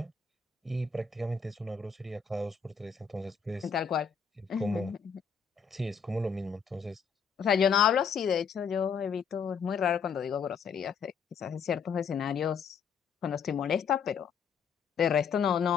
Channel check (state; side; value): quieter; right; 6.5 dB